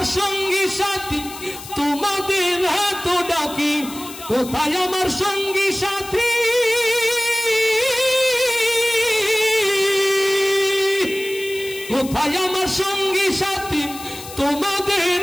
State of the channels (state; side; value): noise; left; hiss, 14 dB below the sound